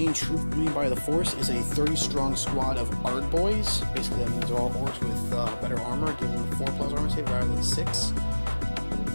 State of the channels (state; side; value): inverted; both; correlation -1.00